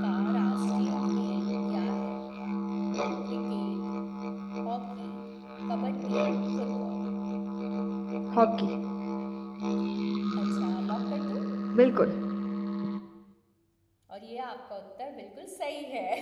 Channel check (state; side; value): identical; both; correlation 1.00